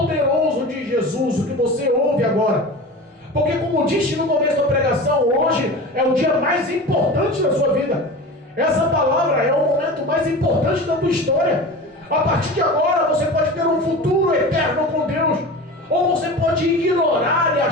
de Jesus o que você ouve agora. Porque como disse no começo da pregação, hoje é o dia mais importante da sua vida. Essa palavra é o momento mais importante da tua história. A partir de agora você pode ter um futuro eterno com Deus. Ou você pode ignorar e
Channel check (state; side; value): normal; both; correlation 0.32